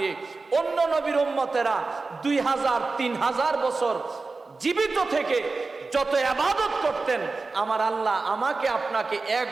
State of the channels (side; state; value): left; quieter; 3.8 dB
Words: অন্য নবীর উম্মতেরা 2000-3000 বছর জীবিত থেকে যত ইবাদত করতেন, আমার আল্লাহ আমাকে আপনাকে 1